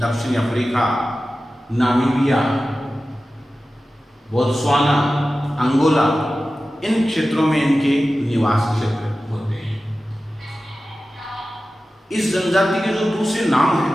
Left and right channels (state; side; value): normal; both; correlation 0.94